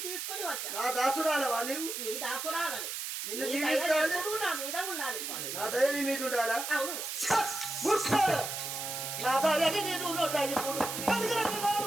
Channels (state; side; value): noise; right; hiss, 5 dB below the sound